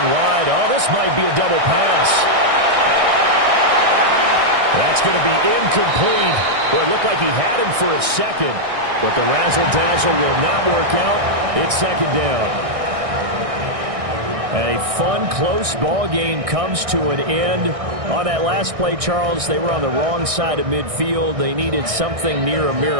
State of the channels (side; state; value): left; late; 1.6 ms